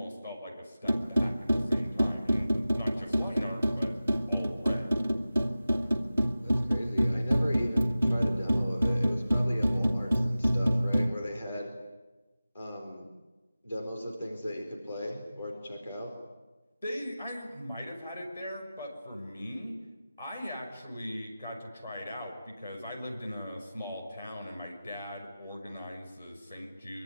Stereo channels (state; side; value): inverted; both; correlation -0.96